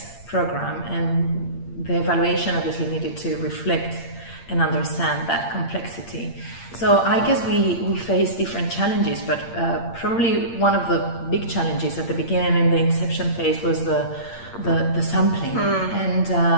program, and the evaluation obviously needed to reflect and understand that complexity. So I guess we face different challenges, but probably one of the big challenges at the beginning in the inception phase was the sampling,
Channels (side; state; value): right; late; 8.7 ms